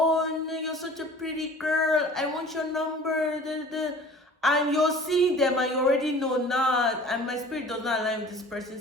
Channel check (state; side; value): normal; both; correlation 0.45